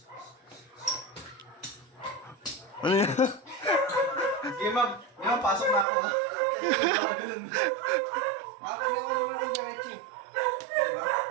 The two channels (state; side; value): drops out; left; at 5.9 s